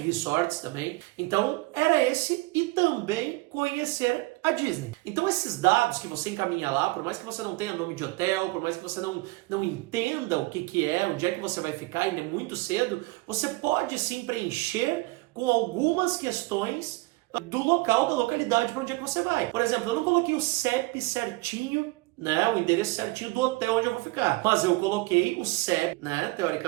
resorts também, então era esse e também conhecer a Disney. Então esses dados que você encaminha lá, por mais que você não tenha nome de hotel, por mais que você não entenda o que é, onde é que você vai ficar, ainda é muito cedo, você pode sim preencher com algumas questões do local, da localidade para onde é que você vai. Por exemplo, eu não coloquei o CEP certinho, né, o endereço certinho do hotel onde eu vou ficar. Mas eu coloquei o CEP, né,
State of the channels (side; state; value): left; quieter; 22.5 dB